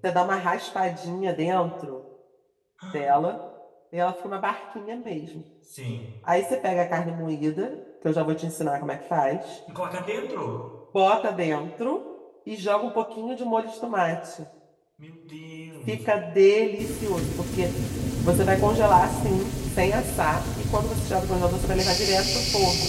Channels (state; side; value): identical; both; correlation 1.00